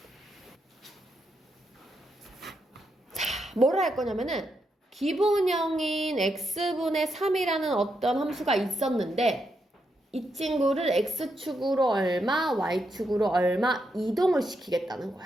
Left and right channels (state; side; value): normal; both; correlation 0.82